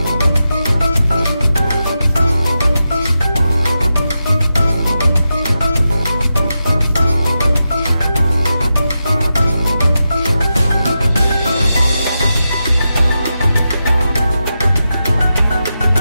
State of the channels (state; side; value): inverted; both; correlation -0.89